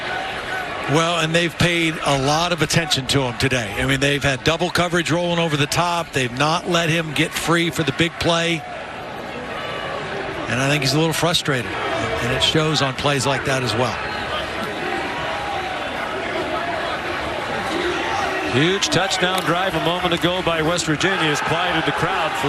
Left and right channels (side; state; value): both; identical; correlation 1.00